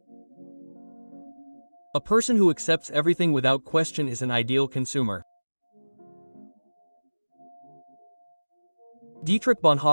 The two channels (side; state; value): both; inverted; correlation -1.00